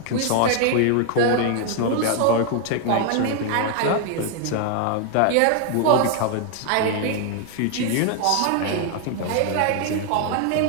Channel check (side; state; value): both; different; correlation 0.00